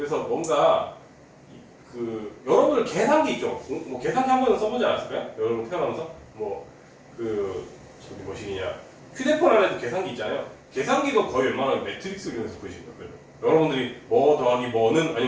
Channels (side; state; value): both; identical; correlation 1.00